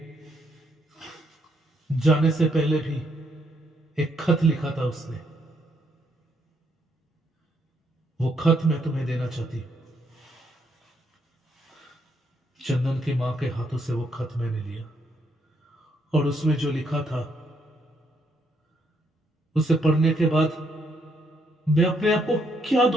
जाने से पहले भी एक खत लिखा था उसने। वो खत मैं तुम्हें देना चाहती हूं। चंदन की मां के हाथों से वो खत मैंने लिया और उसमें जो लिखा था, उसे पढ़ने के बाद मैं अपने आप को क्या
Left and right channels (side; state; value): both; normal; correlation 0.73